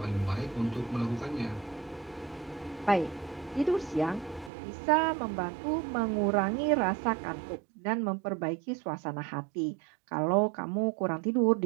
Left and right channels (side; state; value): left; drops out; at 4.5 s